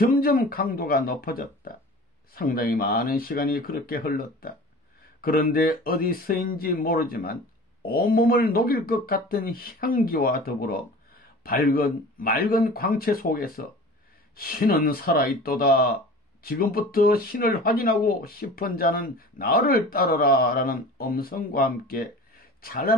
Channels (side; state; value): both; normal; correlation 0.40